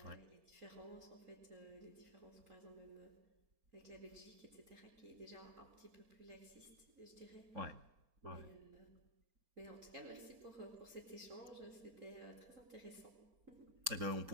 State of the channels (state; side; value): late; left; 4.4 ms